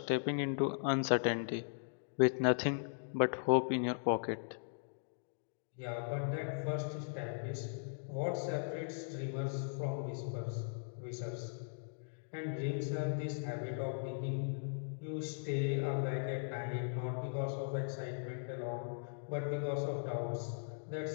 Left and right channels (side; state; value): right; silent; digital silence